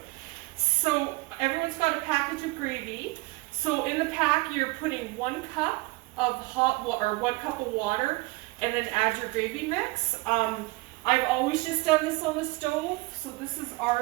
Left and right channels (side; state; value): left; quieter; 23.3 dB